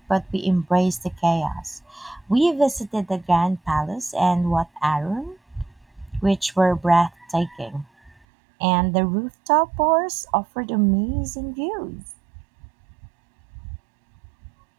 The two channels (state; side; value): drops out; left; at 8.2 s